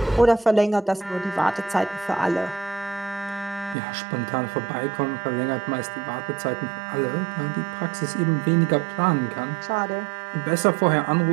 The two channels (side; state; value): left; drops out; at 3.8 s